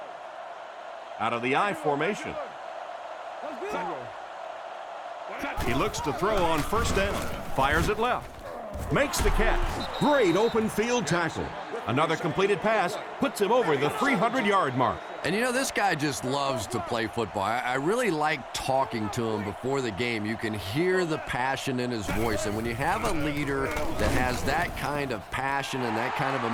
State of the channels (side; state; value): both; identical; correlation 1.00